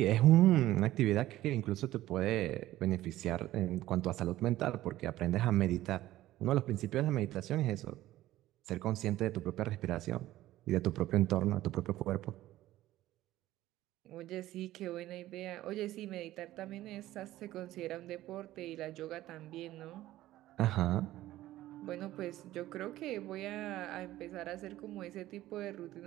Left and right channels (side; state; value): left; quieter; 15.2 dB